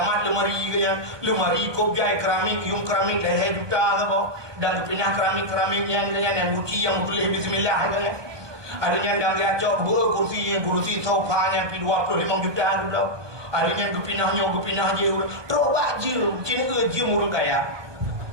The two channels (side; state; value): left; late; 1.2 ms